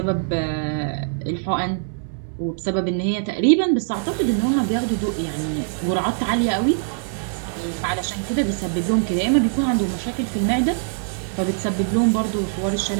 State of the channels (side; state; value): left; silent; digital silence